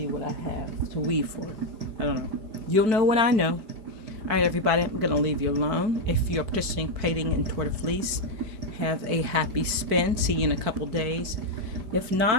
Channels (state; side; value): late; left; 4.6 ms